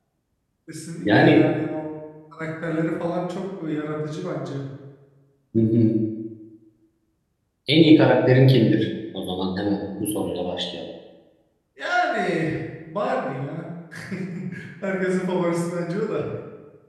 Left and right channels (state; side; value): identical; both; correlation 1.00